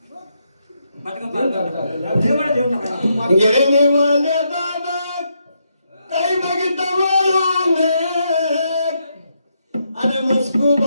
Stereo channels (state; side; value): inverted; both; correlation -0.79